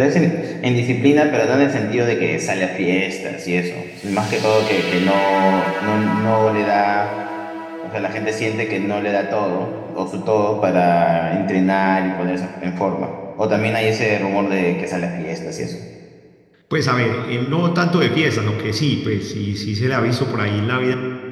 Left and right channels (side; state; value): both; identical; correlation 1.00